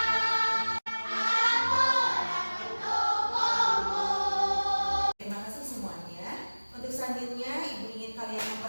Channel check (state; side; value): inverted; both; correlation -1.00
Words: Selanjutnya, Ibu ingin kalian